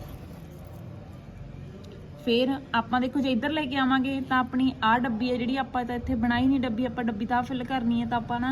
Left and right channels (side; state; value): both; identical; correlation 1.00